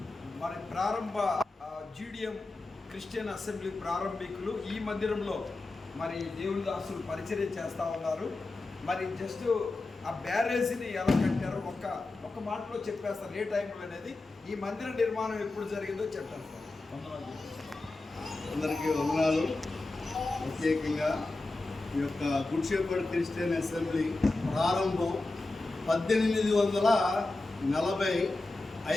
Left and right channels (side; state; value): right; quieter; 3.1 dB